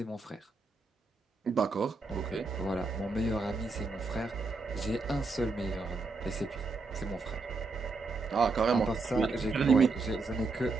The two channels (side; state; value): left; quieter; 3.7 dB